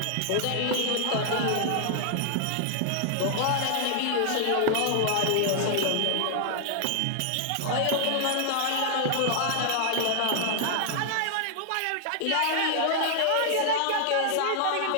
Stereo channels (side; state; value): both; different; correlation -0.01